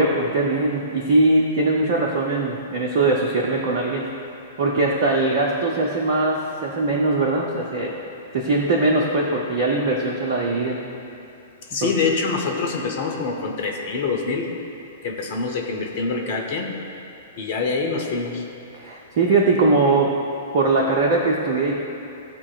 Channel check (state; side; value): inverted; both; correlation -0.35